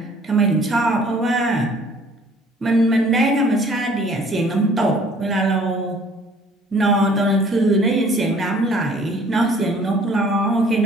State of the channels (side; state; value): both; normal; correlation 0.55